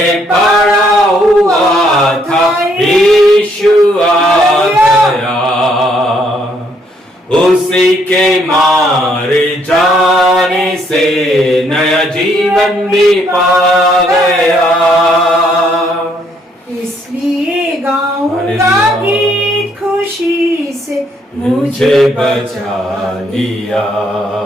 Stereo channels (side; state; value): both; normal; correlation 0.70